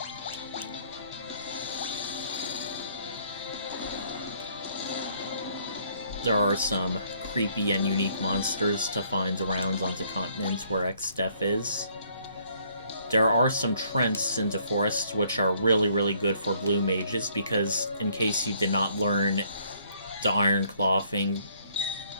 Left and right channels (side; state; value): both; inverted; correlation -0.64